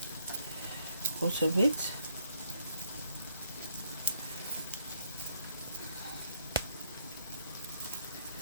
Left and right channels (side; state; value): both; inverted; correlation -0.67